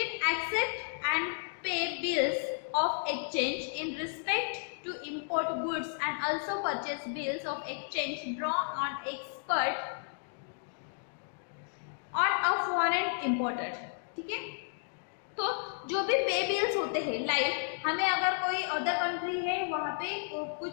accept and pay bills of exchange in respect to import goods and also purchase bills of exchange draw on expert on a foreign imported, ठीक है। तो जो भी पे बिल्स होते हैं, लाइक हमें अगर कोई अदर कंट्री है वहाँ पे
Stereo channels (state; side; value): silent; right; digital silence